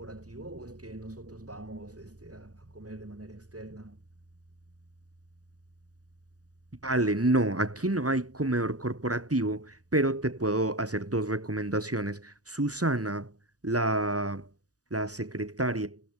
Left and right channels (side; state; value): left; late; 0.67 ms